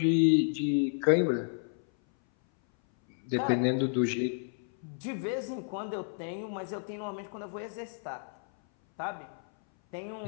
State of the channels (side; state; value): right; silent; 57 dB below the other